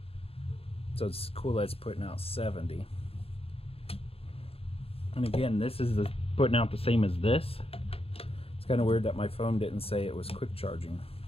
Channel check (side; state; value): right; late; 0.28 ms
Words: So it's cool that it's putting out 70. And again, this is putting out the same as this. It's kind of weird that my phone didn't say it was quick charging